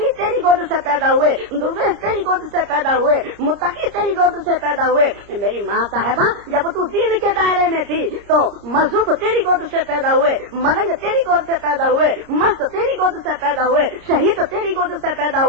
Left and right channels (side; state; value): left; late; 30 ms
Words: تیری گود سے پیدا ہوئے، درویش تیری گود سے پیدا ہوئے، متقی تیری گود سے پیدا ہوئے. میری ماں صاحبہ جب تو دین کے دائرے میں تھی تو مذہب تیری گود سے پیدا ہوئے، ملنگ تیری گود سے پیدا ہوئے، مست تیری گود سے پیدا ہوئے، شہید تیری گود سے پیدا